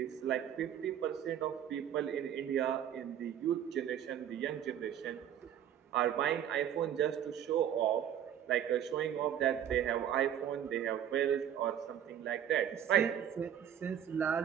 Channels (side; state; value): left; quieter; 9.8 dB